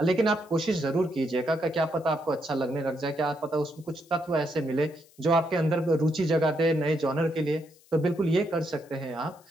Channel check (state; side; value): noise; left; hiss, 29 dB below the sound